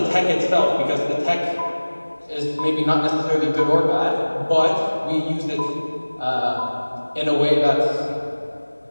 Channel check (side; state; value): both; inverted; correlation -1.00